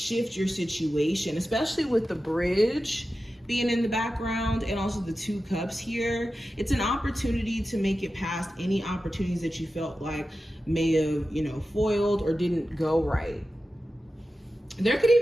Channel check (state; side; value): normal; both; correlation 0.92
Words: your situation, especially with the bridge being in the background and also the Two Cups here. It's an opportunity to make it past any opportunities that you felt like may have, you know, foiled or didn't go right. There could